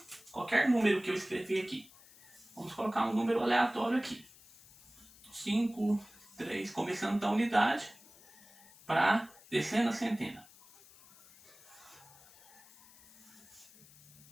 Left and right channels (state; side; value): noise; left; hiss, 23 dB below the sound